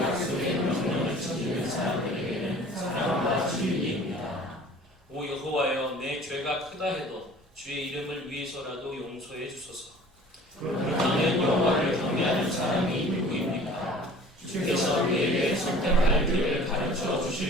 명령을 지키는 사람들에게는 사랑과 진리입니다. 오 여호와여, 내 죄가 크다 해도 주의 이름을 위해서라도 용서해 주소서. 그 땅에 여호와를 경외하는 사람이 누구입니까? 주께서 그에게 선택할 길을 가르쳐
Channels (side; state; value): both; normal; correlation 0.47